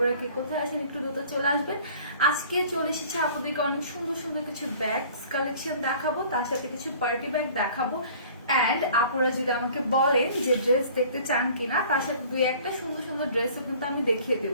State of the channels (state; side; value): inverted; both; correlation -0.50